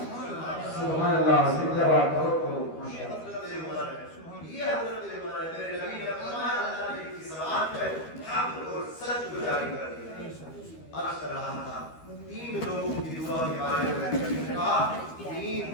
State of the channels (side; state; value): right; late; 13 ms